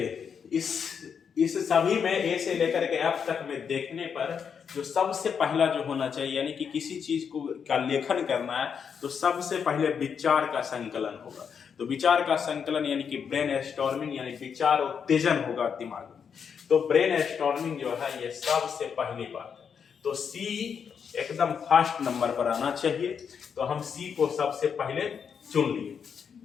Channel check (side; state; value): right; quieter; 6.9 dB